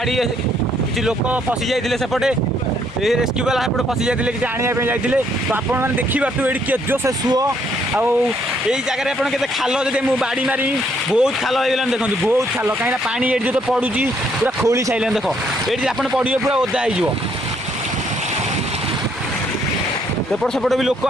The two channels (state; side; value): normal; both; correlation 0.69